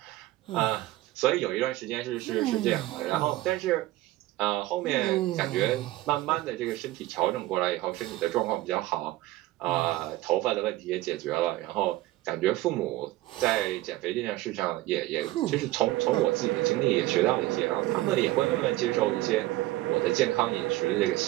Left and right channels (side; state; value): left; quieter; 17.2 dB